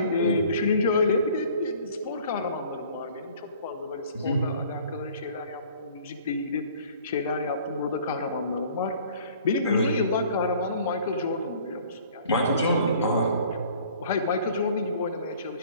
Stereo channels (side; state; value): both; inverted; correlation -0.52